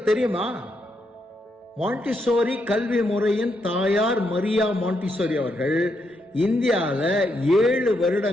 தெரியுமா, மாண்டிசோரி கல்வி முறையின் தாயார் மரியா மாண்டிசோரி அவர்கள் இந்தியாவில் 7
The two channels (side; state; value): both; normal; correlation 0.79